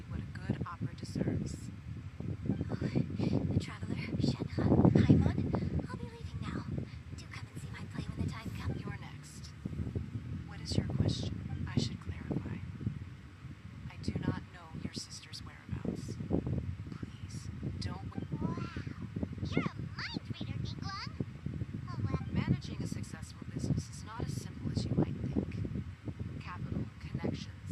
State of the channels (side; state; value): both; identical; correlation 1.00